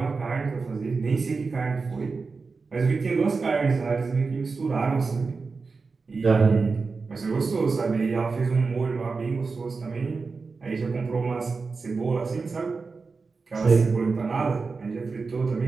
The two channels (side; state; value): left; quieter; 4.4 dB